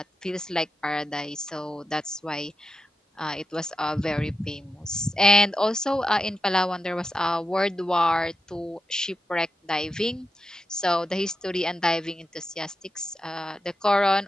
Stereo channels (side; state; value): both; normal; correlation 0.89